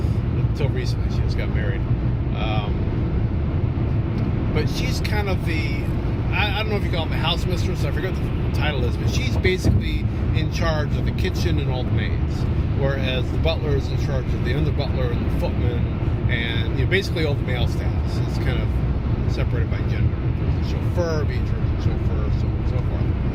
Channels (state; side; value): identical; both; correlation 1.00